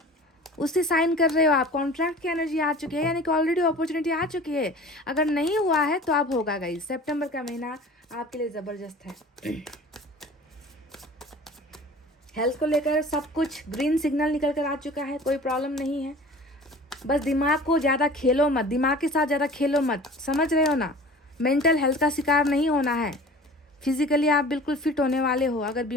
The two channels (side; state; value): both; normal; correlation 0.42